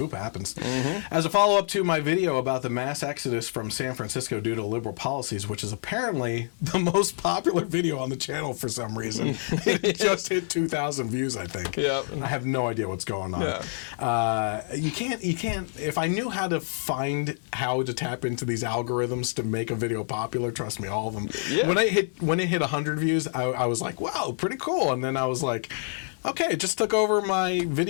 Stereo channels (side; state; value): right; silent; digital silence